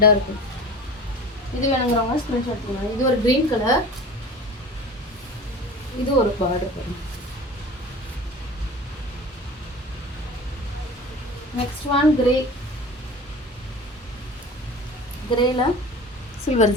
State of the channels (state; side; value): normal; both; correlation 0.38